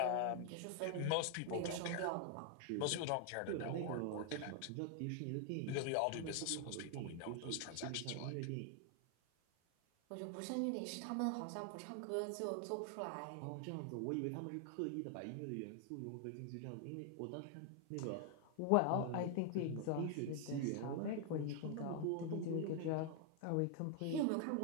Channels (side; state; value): both; different; correlation 0.00